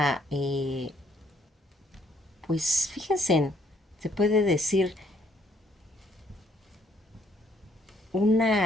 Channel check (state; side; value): normal; both; correlation 0.67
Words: pues fíjense, se puede decir